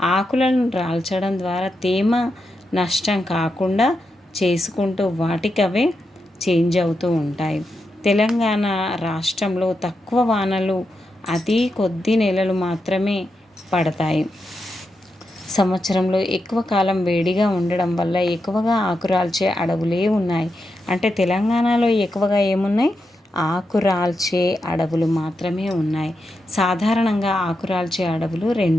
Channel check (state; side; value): normal; both; correlation 0.86